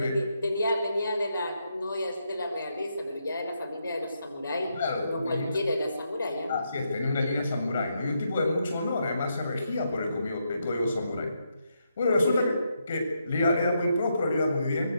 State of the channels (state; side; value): inverted; both; correlation -0.80